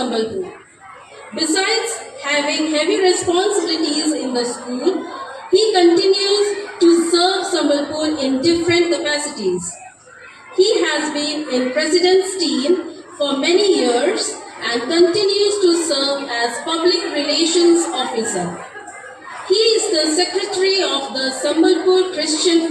Besides having heavy responsibilities in the school, he continues to serve Sambalpur in different capacities. He has been in President's team for many years and continues to serve as Public Relations Officer. He is the Secretary of the Sambalpur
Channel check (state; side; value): identical; both; correlation 1.00